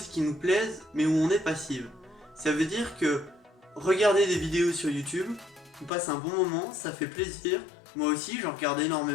qui nous plaisent mais où on est passif. Ça veut dire que regarder des vidéos sur YouTube, on passe un bon moment, ça fait plaisir. Moi aussi, j'en regarde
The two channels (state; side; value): drops out; right; at 5.9 s